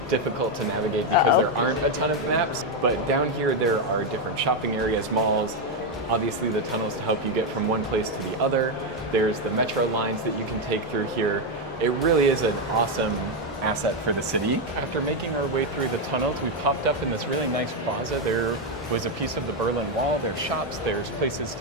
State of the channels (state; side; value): normal; both; correlation 0.05